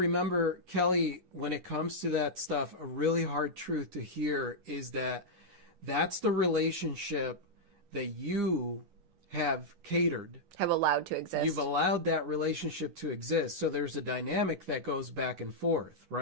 Kelly, when it comes to that stuff, a really hard truth to hear is that that's the relationship that you have catered. Have allowed to exist. You've allowed that relationship to exist. So there's a dynamic that goes back and forth,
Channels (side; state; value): left; late; 11 ms